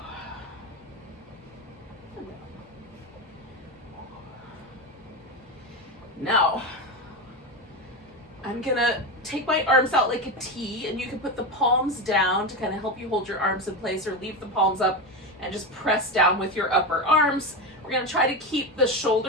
Now, I'm gonna take my arms out like a T, and you can put the palms down to kind of help you hold your arms in place, or leave the palms up and just press down with your upper arms, or We're gonna try to keep the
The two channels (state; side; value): normal; both; correlation 0.18